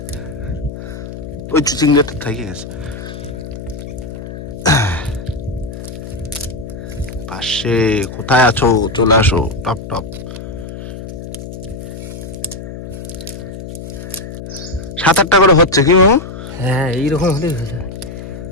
ওই চিংড়িটা থেকে গেছে পাশে। কোথায় আছো? চলে আসো, টপ টপ। 7-8টা করে হচ্ছে কি মামু? হ্যাঁ, এইরকম হলেই হয়ে যায়।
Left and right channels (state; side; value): noise; left; hum, 10 dB below the sound